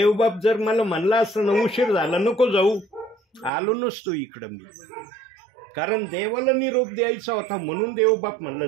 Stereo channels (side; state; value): left; drops out; at 3.5 s